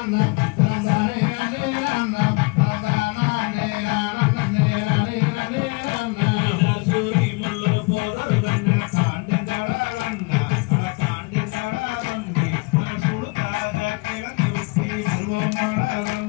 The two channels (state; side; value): quieter; right; 28.1 dB